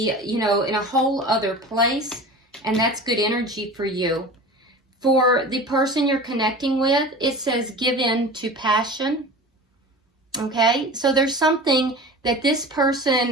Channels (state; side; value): normal; both; correlation 0.36